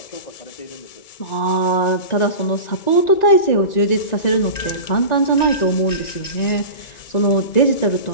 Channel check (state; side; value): late; right; 1.9 ms